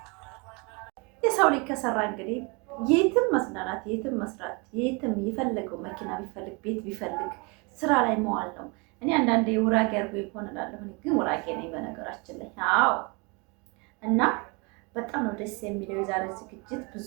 የሰው ልጅ ከሰራ እንግዲህ የትም መስናናት፣ የትም መስራት፣ የትም የፈለገው መኪና ቢፈልግ ቤት ቢፈልግ ስራ ላይ መዋል ነው። እኔ አንዳንዴ ውራጌ አድርጎ ይሆን እላለሁ፣ ግን ውራጌ ነኝ በነገራችን ላይ። አዎ። እና በጣም ነው ደስ የሚለው የዛሬ ዝግጅት።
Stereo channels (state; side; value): quieter; left; 30.0 dB